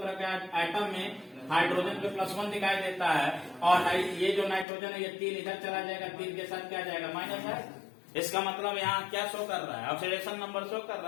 के एटम में हाइड्रोजन पे +1 दिखाई देता है, और ये जो नाइट्रोजन है ये 3 इधर चला जाएगा, 3 के साथ क्या जाएगा? माइनस है। इसका मतलब यहाँ क्या शो कर रहा है? ऑक्सीडेशन नंबर शो कर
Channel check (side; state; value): right; drops out; at 4.7 s